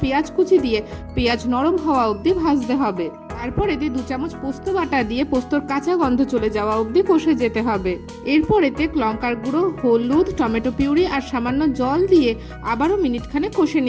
পেঁয়াজ কুচি দিয়ে পেঁয়াজ নরম হওয়া অবধি ভাজতে হবে। তারপর এতে 2 চামচ পোস্ত বাটা দিয়ে পোস্তর কাঁচা গন্ধ চলে যাওয়া অবধি কষে যেতে হবে। এরপর এতে লঙ্কার গুঁড়ো, হলুদ, টমেটো পিউরি আর সামান্য জল দিয়ে আবারও মিনিটখানেক কষে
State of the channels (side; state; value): both; identical; correlation 1.00